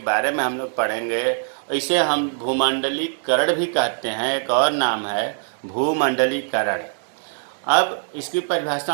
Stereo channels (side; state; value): left; silent; digital silence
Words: बारे में हम लोग पढ़ेंगे। इसे हम भूमंडलीकरण भी कहते हैं, एक और नाम है भूमंडलीकरण। अब इसकी परिभाषा